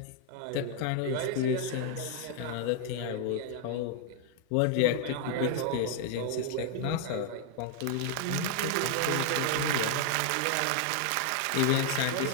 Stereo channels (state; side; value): different; both; correlation 0.00